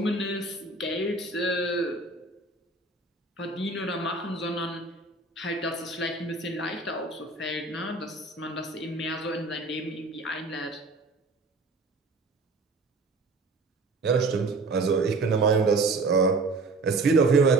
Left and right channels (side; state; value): left; quieter; 3.5 dB